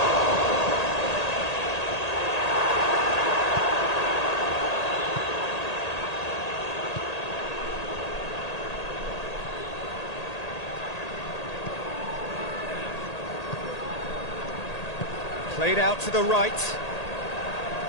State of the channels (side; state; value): right; late; 1.8 ms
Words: played out to the right.